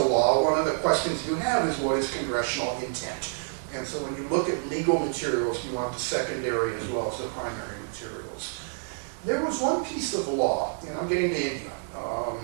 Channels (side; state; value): left; silent; 59 dB below the other